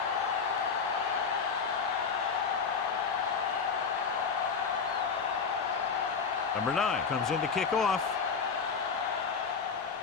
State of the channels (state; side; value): quieter; right; 5.6 dB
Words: Number 9 comes in to kick off.